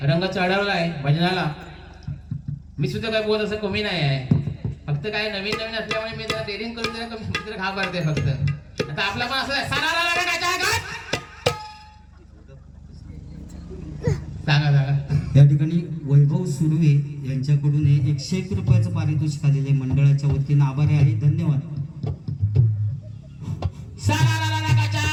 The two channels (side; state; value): both; identical; correlation 1.00